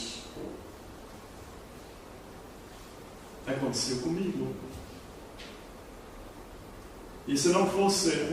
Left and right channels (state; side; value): identical; both; correlation 1.00